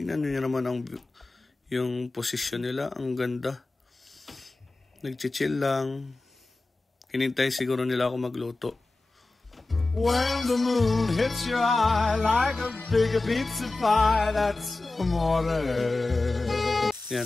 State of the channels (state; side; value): quieter; right; 3.2 dB